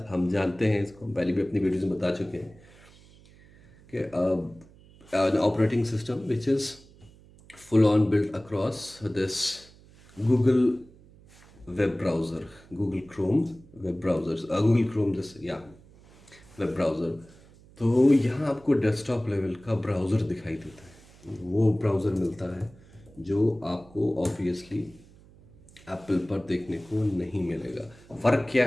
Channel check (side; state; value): right; noise; hum, 25 dB below the sound